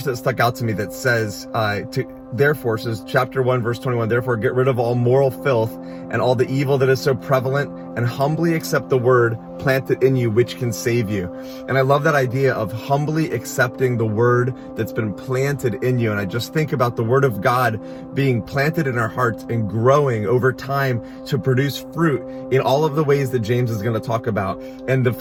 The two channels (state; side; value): identical; both; correlation 1.00